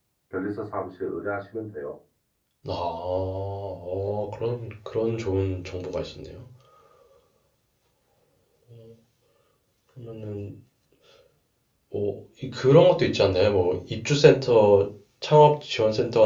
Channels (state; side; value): identical; both; correlation 1.00